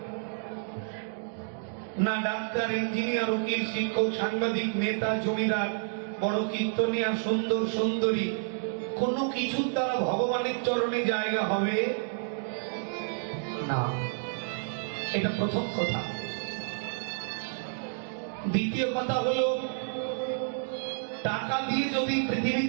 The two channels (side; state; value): left; silent; digital silence